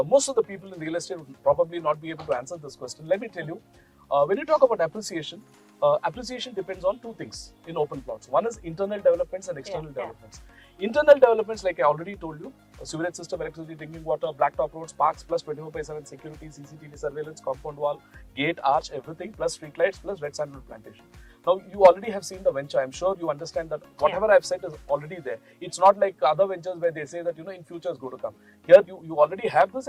most of the people in real estate would probably not be able to answer this question. Let me tell you, when you talk about appreciation, appreciation depends on 2 things in open plots. One is internal developments and external developments. Internal developments, like I already told you, sewerage system, electricity, drinking water, blacktop roads, parks, plus 24/7 security, CCTV surveillance, compound wall, gate, arch, everything, plus street lights, plus red sandalwood plantation. Now, you already have seen the venture. I'm sure you understand that whatever I've said is already there. It's not like other ventures where they say that, in future is going to come. Here, you already have this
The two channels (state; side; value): identical; both; correlation 1.00